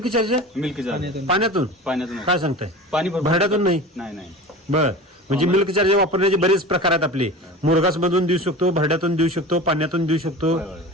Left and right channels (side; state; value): both; normal; correlation 0.34